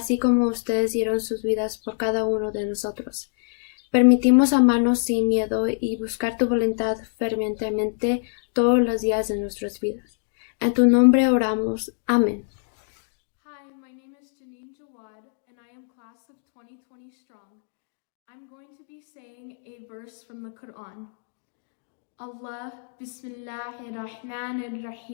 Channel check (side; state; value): right; silent; digital silence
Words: como ustedes dieron sus vidas por cada uno de nosotros. Permitimos amarnos sin miedo y buscar tu voluntad fervientemente todos los días de nuestras vidas. En tu nombre oramos. Amén. Hi, my name is Janine Jawad, and I am class of 2020 strong. I'm going to be saying a verse from the Quran. Allah, Bismillahir Rahmanir